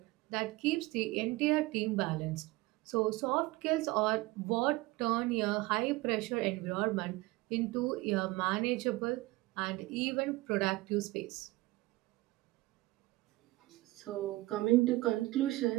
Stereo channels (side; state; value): left; quieter; 20.3 dB